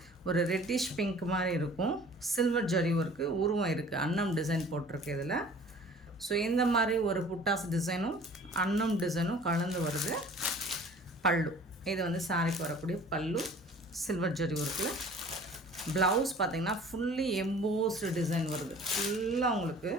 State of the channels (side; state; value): both; normal; correlation 0.48